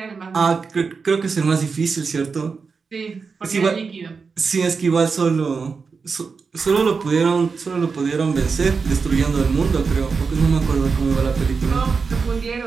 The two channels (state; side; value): quieter; left; 5.0 dB